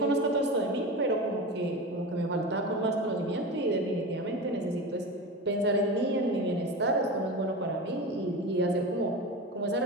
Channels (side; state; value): both; normal; correlation 0.27